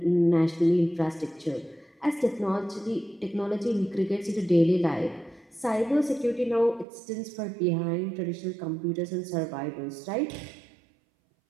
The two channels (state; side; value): drops out; left; at 6.9 s